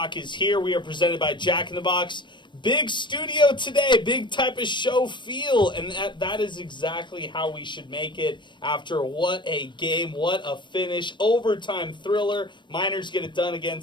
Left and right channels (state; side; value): late; right; 0.22 ms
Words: is here. We are presented by Jack in the Box. Big studio today, big type of show feel, and that is exactly how we should make it after what a game, what a finish, overtime thriller. Miners get it done